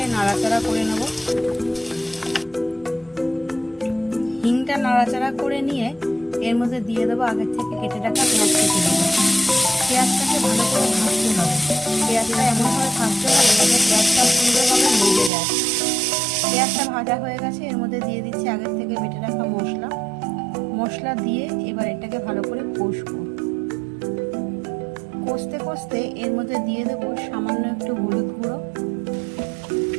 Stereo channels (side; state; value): left; drops out; at 15.3 s